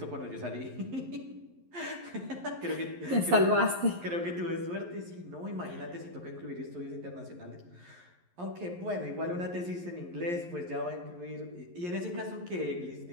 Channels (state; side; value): late; left; 11 ms